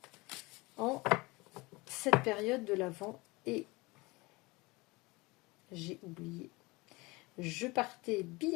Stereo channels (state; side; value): quieter; right; 23.7 dB